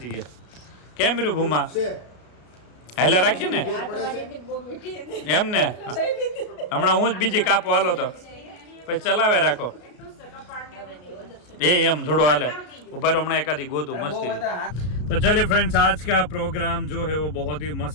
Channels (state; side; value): late; right; 33 ms